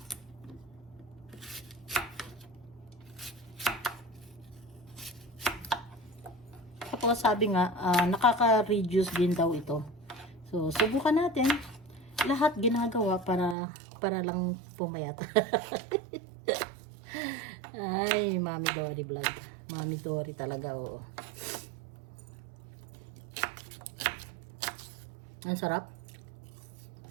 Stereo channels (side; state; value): left; drops out; at 13.6 s